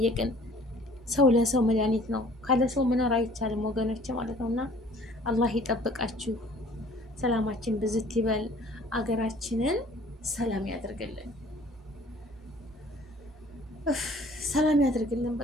ሰው ለሰው መድኃኒት ነው። ካለ ሰው መኖር አይቻልም ወገኖች ማለት ነው። እና አላህ ይጠብቃችሁ። ሰላማችን ብዝት ይበል። አገራችንን ሰላም ያደርግልን። ሰላም ያደርግልን።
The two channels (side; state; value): both; normal; correlation 0.53